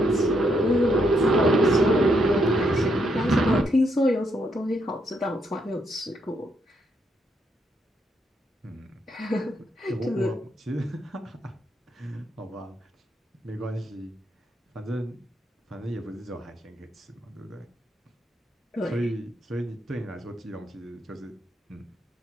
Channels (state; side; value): normal; both; correlation 0.76